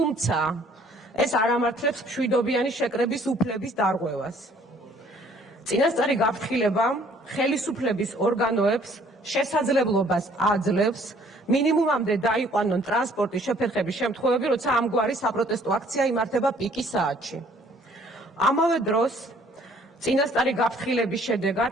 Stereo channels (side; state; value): both; normal; correlation 0.59